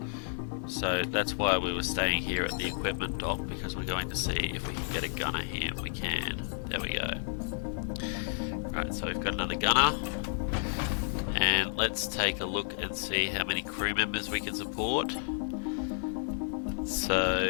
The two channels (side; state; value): right; silent; 56 dB below the other